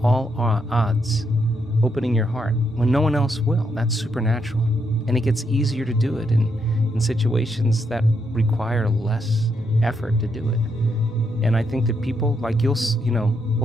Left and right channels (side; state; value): both; normal; correlation 0.78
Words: odds, opening your heart when no one else will, that's supernatural. And it gets easier to do it in situations that require less effort to do it. And I think that people, like, we'll